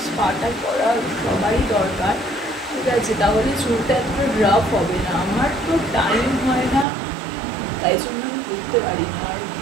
স্পাটা করা সবারই দরকার, ঠিক আছে, তাহলে চুলটা এতটা রাফ হবে না। আমার তো টাইম হয় না, তাই জন্য আমি করতে পারি না, আর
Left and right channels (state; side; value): drops out; left; at 6.9 s